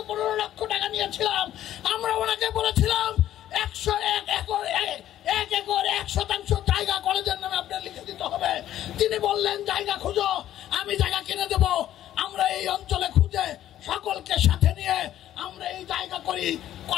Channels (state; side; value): quieter; right; 12.3 dB